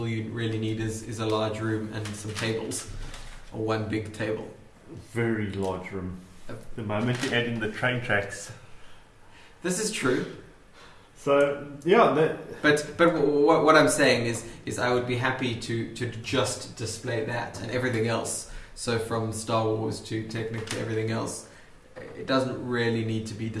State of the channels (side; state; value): both; identical; correlation 1.00